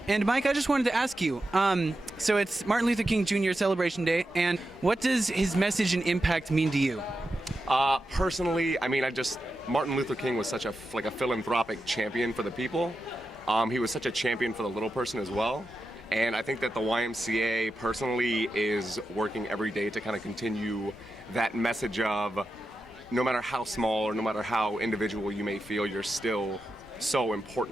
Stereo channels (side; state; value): both; normal; correlation 0.89